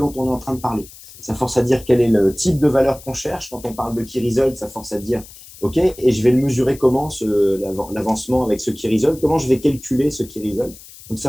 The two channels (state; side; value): noise; left; hiss, 19 dB below the sound